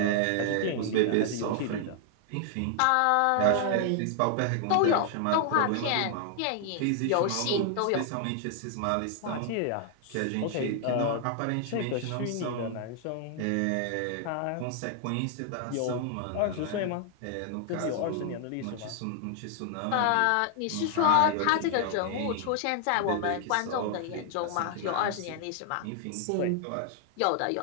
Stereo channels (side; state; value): both; different; correlation 0.00